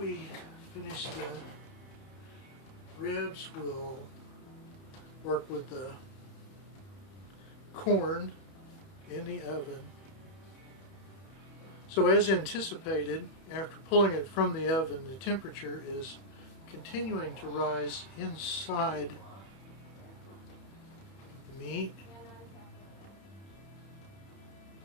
finish the ribs, we'll work with the corn in the oven. So as anticipated, after pulling it from the oven, the temperature is continuing to rise inside the meat.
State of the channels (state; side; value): late; right; 31 ms